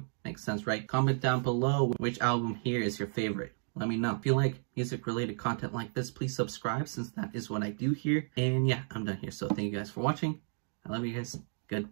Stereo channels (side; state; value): left; silent; 56 dB below the other